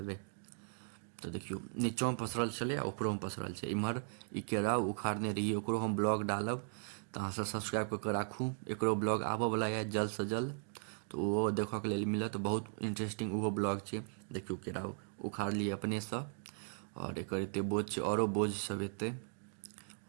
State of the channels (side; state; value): left; silent; 53 dB below the other